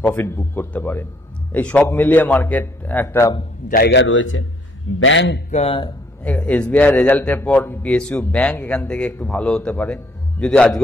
প্রফিট বুক করতে পারে। এই সব মিলিয়ে মার্কেট একটা জায়গা রয়েছে। ব্যাংক, এসবিআই রেজাল্টের পর পিএসইউ ব্যাংক এখান থেকে একটু ভালো হতে পারে, যদি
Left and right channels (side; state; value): both; normal; correlation 0.66